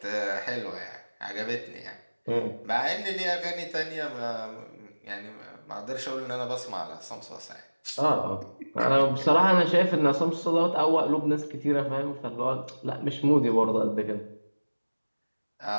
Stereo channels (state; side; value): inverted; both; correlation -1.00